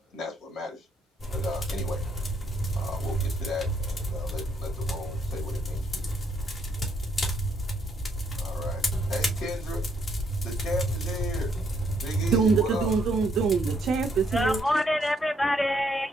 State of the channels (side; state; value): both; normal; correlation 0.72